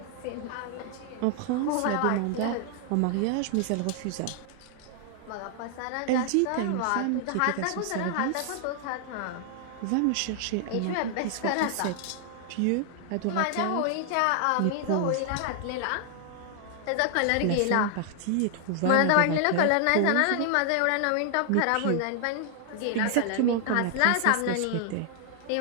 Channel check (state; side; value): different; both; correlation 0.00